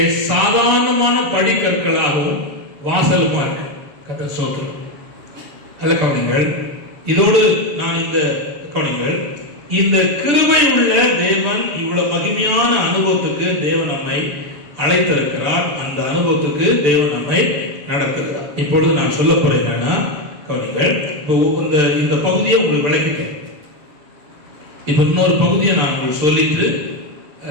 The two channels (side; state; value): left; late; 6.8 ms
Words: சாதாரணமான படிக்கற்களாகவும் வாசலுமா இருக்கு கர்த்தர் சொல்றார். நல்ல கவனிங்கள். இதோடு நான் இந்த கவனிங்கள், இந்த கிருபை உள்ள தேவன் இவ்வளவு மகிமையான அனுபவத்துக்கு தேவன் நம்மை அழைத்திருக்கிறார். அந்த அனுபவத்துக்கு தேவன் நம்மை நடத்துகிறார். இப்பொழுது நான் சொல்ல போறேன் என்னன்னா, கவனிங்கள், இந்த பகுதியை உங்களுக்கு விளக்கிட்டேன். இப்ப இன்னொரு பகுதியை நான் உங்களுக்கு சொல்லிட்டு